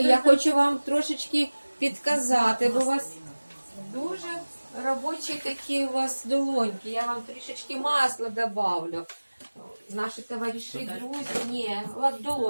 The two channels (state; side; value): inverted; both; correlation -1.00